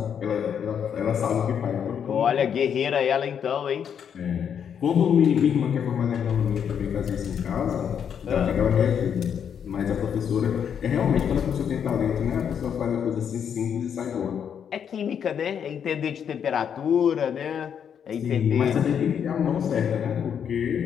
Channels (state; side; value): quieter; right; 8.0 dB